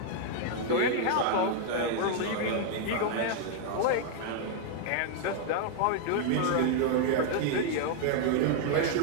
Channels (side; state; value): both; different; correlation 0.00